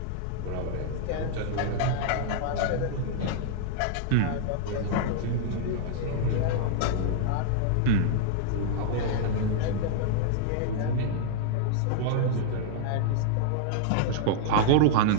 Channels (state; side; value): different; both; correlation -0.01